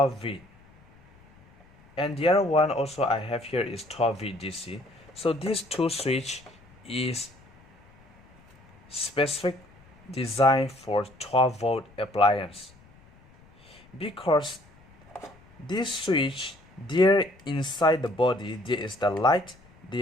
and the other one also I have here is 12V DC. So these two switch is specific design for 12-volt appliance, because this switch, there inside the body there is the light,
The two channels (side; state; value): left; noise; rumble, 27 dB below the sound